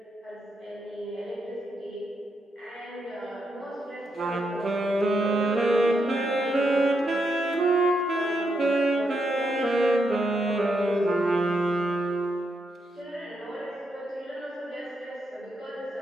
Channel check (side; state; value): both; normal; correlation 0.81